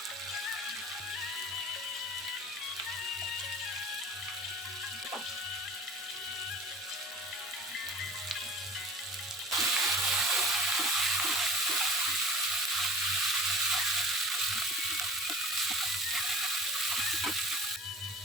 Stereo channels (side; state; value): both; normal; correlation 0.43